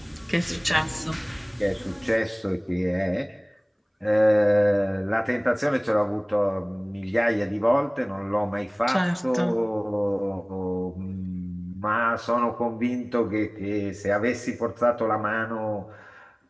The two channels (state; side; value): identical; both; correlation 1.00